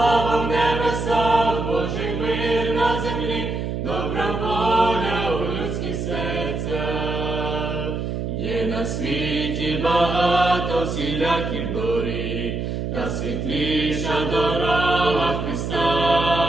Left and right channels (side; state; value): right; noise; hum, 3 dB below the sound